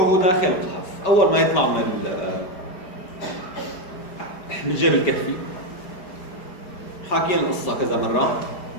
داخل القحف، اول ما يطلع من الجيب الكهفي حاكيين القصه كذا مره،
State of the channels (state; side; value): late; right; 5.2 ms